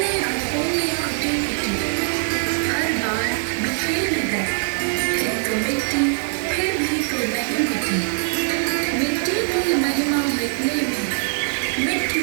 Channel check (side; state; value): left; silent; digital silence